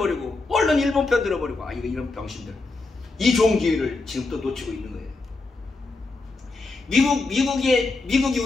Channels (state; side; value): quieter; right; 3.5 dB